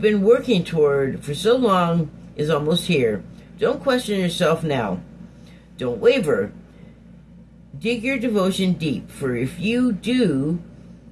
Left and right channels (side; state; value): both; identical; correlation 1.00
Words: been working toward for so long is almost here. Don't question yourself now. Don't waver. Dig your devotion deep, for if you do,